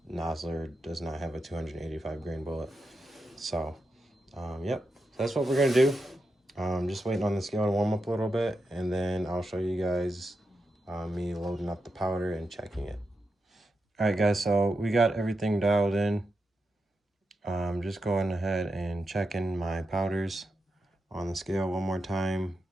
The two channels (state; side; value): normal; both; correlation 0.88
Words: Nosler does not have a 285 grain bullet. So, yep, that's what we're gonna do. Just waiting on the scale to warm up a little bit, and then I'll show you guys me loading up the powder and checking it. All right, guys, so we got everything dialed in. Just going ahead and checking my powders on the scale one more time.